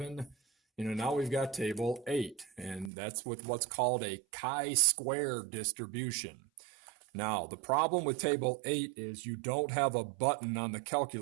Now we've got table 8, and that's with what's called a chi-square distribution. Now, the problem with table 8 is you don't have a button on the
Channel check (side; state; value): left; drops out; at 2.9 s